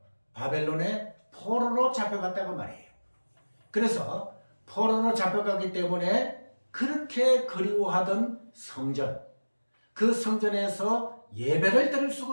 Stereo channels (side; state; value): both; inverted; correlation -1.00